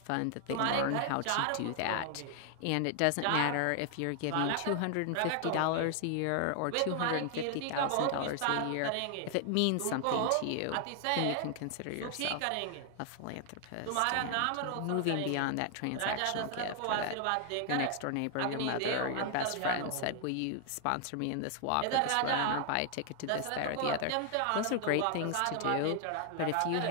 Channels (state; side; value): different; both; correlation 0.00